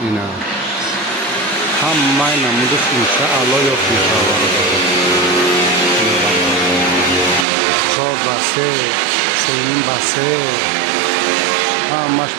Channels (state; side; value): drops out; left; at 7.5 s